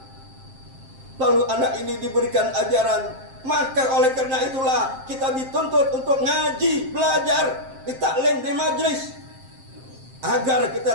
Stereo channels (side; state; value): left; late; 7.6 ms